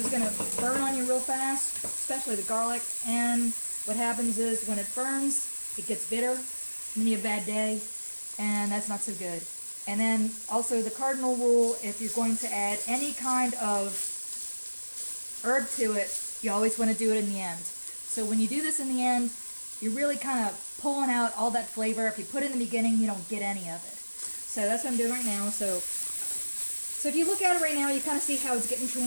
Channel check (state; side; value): inverted; both; correlation -1.00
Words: going to burn on you real fast, especially the garlic. And what happens is when it burns, it gets bitter, and then you have a bad day, and that's not so good. And then also the cardinal rule, if you're going to add any kind of herb to it, you always want to do it in the end. So when you do this in the end, you're really kind of pulling out all that flavor. If you put it in the beginning, you don't get any of it. So that's what I'm doing right now. So if you look at it right now, you kind of see how it's getting